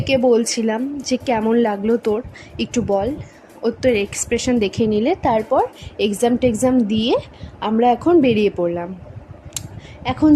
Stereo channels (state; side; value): identical; both; correlation 1.00